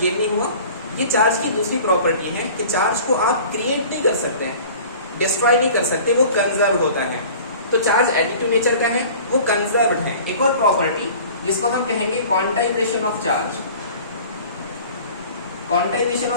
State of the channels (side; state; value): both; inverted; correlation -0.44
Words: नहीं हुआ। ये चार्ज की दूसरी प्रॉपर्टी है कि चार्ज को आप क्रिएट नहीं कर सकते हैं, डिस्ट्रॉय नहीं कर सकते, वो कंजर्व होता है। तो चार्ज एडिटिव नेचर का है, वो कंजर्व्ड है। एक और प्रॉपर्टी जिसको हम कहेंगे quantization of charge. Quantization